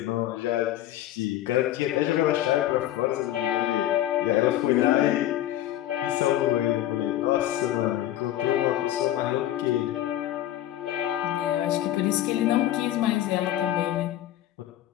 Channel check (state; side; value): quieter; right; 13.2 dB